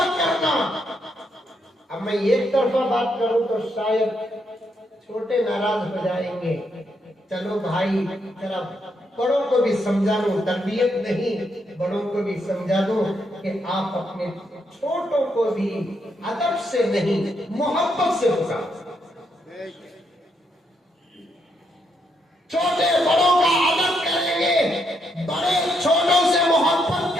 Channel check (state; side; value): normal; both; correlation 0.78